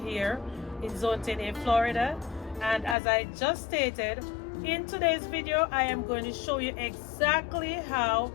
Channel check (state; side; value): drops out; right; at 3.0 s